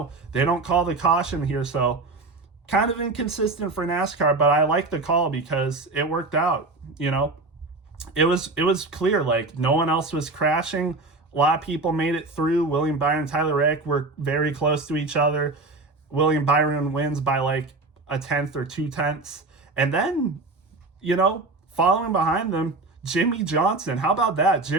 they don't call the caution here, so kind of inconsistent for NASCAR, but I like the call because it worked out. You know, it was clear, like no one else was crashing. A lot of people made it through. William Byron and Tyler Reddick were very close to each other. William Byron wins by like 1/10 or 2/10. And then, you know, following behind them, Jimmy Johnson. How about that?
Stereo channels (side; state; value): left; quieter; 3.3 dB